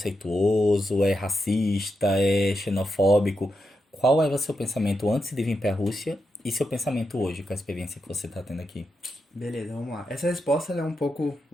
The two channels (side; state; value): both; normal; correlation 0.86